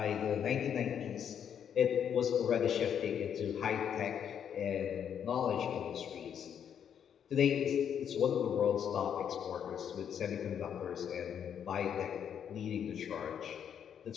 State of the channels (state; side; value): quieter; right; 8.5 dB